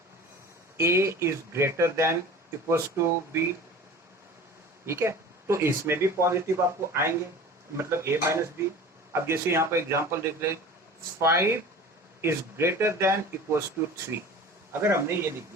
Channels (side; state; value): both; normal; correlation 0.39